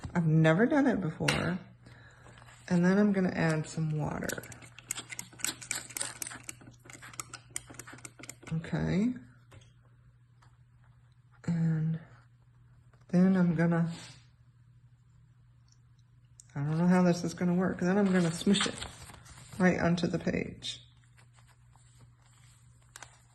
I've never done it before. And then I'm gonna add some water. Okay. And then I'm gonna, I don't know how this is gonna work. Then I'm gonna smush it right onto the page.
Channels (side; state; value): both; identical; correlation 1.00